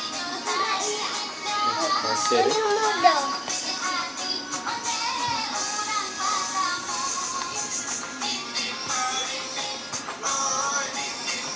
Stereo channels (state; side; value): identical; both; correlation 1.00